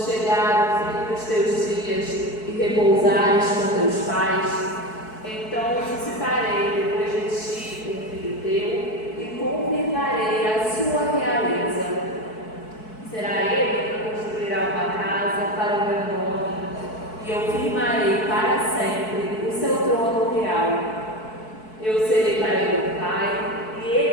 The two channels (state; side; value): late; right; 4.6 ms